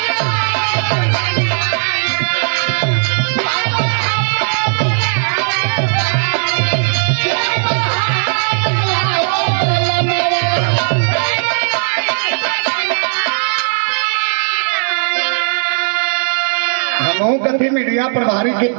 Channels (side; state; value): left; silent; digital silence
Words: कथी मीडिया प्रभारी के